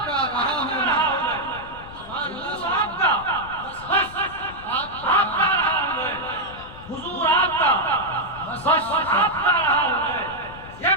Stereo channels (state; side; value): noise; left; rumble, 17 dB below the sound